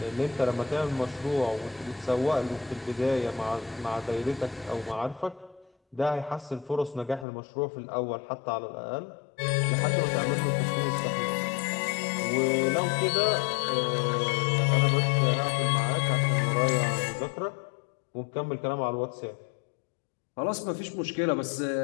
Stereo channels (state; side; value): drops out; right; at 7.2 s